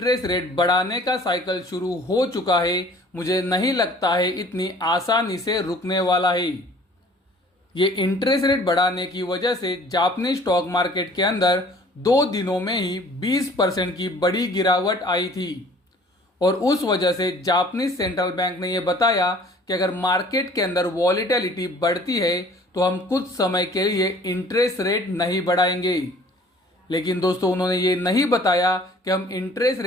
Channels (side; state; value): both; normal; correlation 0.52